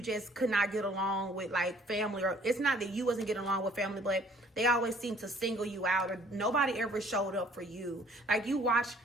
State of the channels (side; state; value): both; normal; correlation 0.57